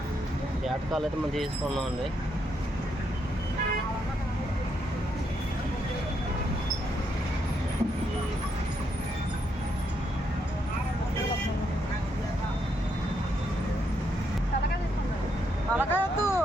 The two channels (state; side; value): normal; both; correlation 0.77